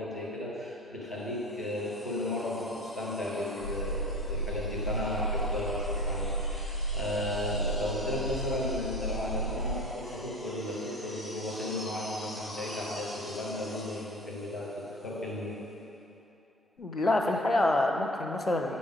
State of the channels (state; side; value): normal; both; correlation 0.39